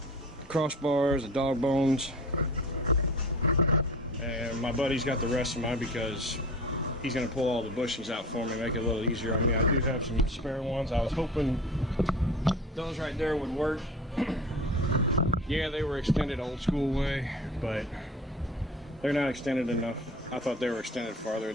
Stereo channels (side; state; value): both; normal; correlation 0.38